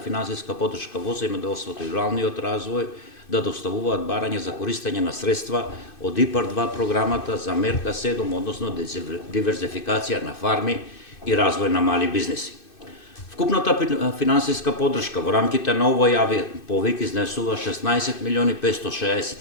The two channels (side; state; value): right; late; 2.6 ms